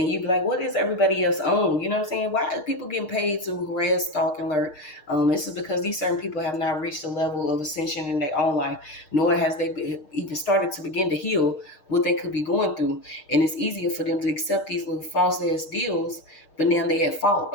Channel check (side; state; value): right; late; 6.5 ms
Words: you be like, what is everybody else on? You know what I'm saying? Why are people getting paid to harass, stalk, and alert? This is because these certain people have not reached a level of ascension in their own life, nor has even started to begin to heal what they could be going through. And it's easier for them to accept these little false ass deals, but now they at fault.